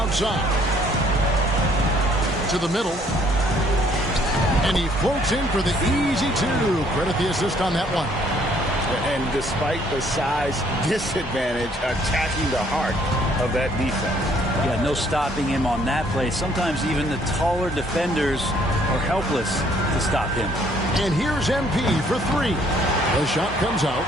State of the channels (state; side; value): normal; both; correlation 0.63